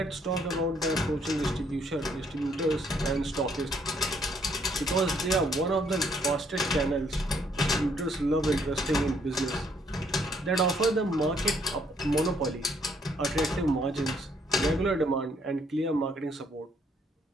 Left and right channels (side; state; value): both; normal; correlation 0.68